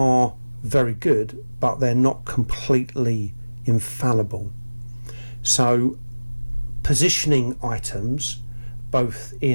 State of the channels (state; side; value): inverted; both; correlation -1.00